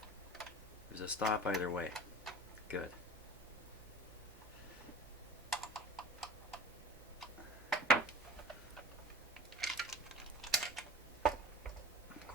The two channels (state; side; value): normal; both; correlation 0.40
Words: there's a stop either way. Good. Of